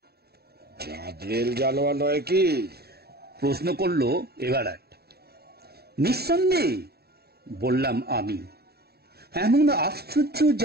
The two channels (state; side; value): late; left; 0.46 ms